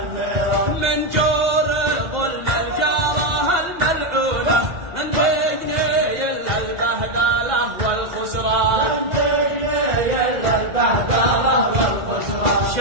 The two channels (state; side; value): late; left; 2.1 ms